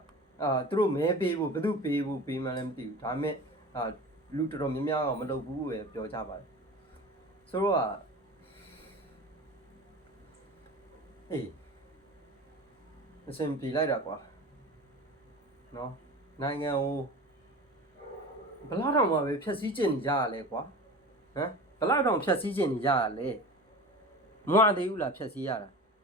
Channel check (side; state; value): both; normal; correlation 0.34